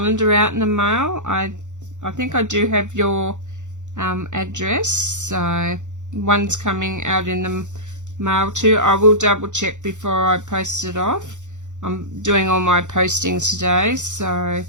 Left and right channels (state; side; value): late; left; 0.85 ms